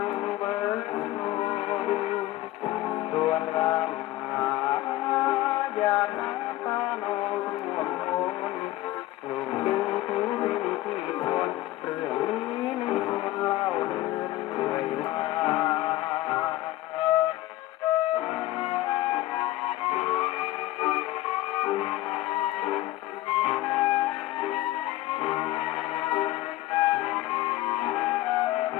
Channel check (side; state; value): right; quieter; 16.3 dB